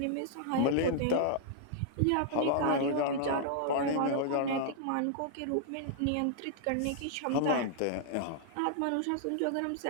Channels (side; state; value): both; different; correlation -0.01